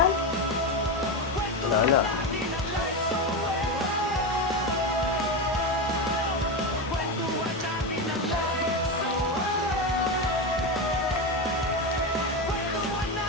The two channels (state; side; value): normal; both; correlation 0.14